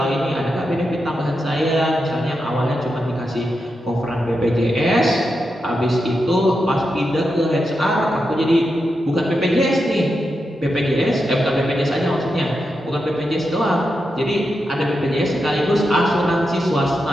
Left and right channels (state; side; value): normal; both; correlation 0.87